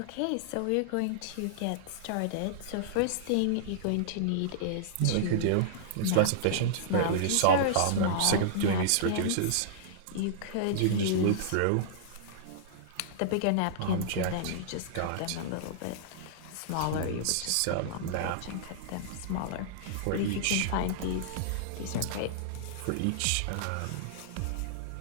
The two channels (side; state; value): both; different; correlation -0.02